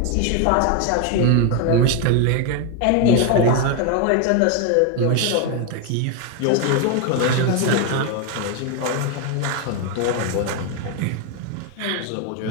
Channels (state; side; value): different; both; correlation 0.01